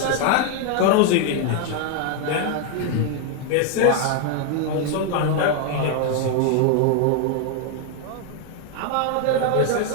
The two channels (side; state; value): both; different; correlation 0.00